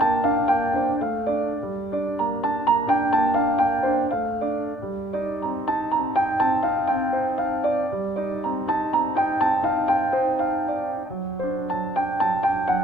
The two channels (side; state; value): both; normal; correlation 0.60